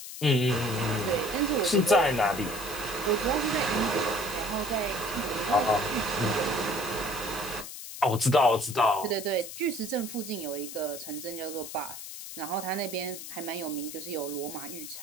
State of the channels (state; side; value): noise; left; hiss, 10 dB below the sound